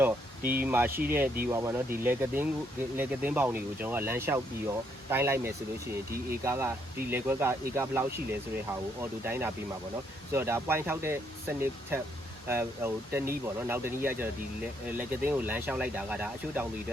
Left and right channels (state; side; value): normal; both; correlation 0.73